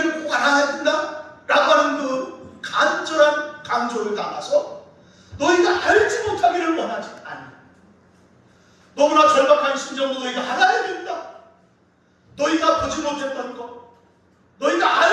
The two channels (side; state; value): both; identical; correlation 1.00